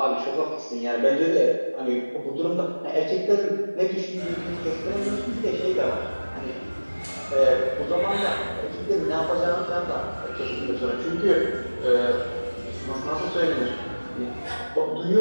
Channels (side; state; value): both; inverted; correlation -1.00